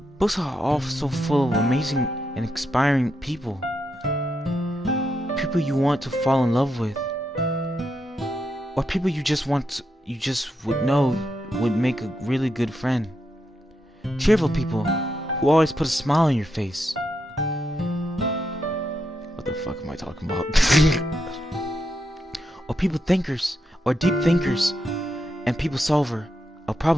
also full of amazing and inspiring people. People you want to fall in love with, or people you just would know would make a really good friend. Cheerful people who always put a smile on your face. What the fuck am I talking about? Or people thinkers, or deep thinkers, and people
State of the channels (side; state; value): both; normal; correlation 0.83